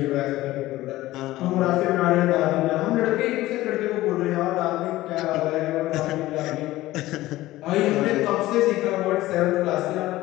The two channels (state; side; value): quieter; right; 16.8 dB